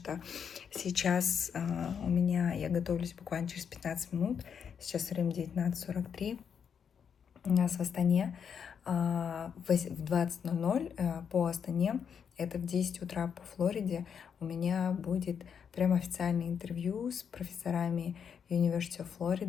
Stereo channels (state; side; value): quieter; right; 7.3 dB